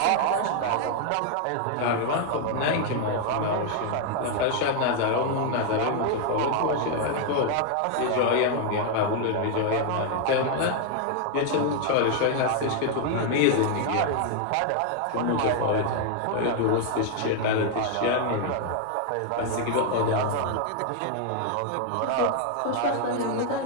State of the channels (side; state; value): both; different; correlation 0.00